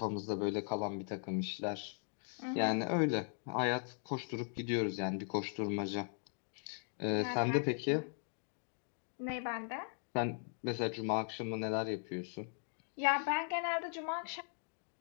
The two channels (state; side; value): silent; right; 52 dB below the other